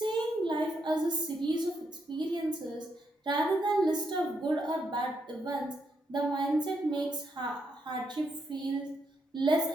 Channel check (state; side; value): normal; both; correlation 0.79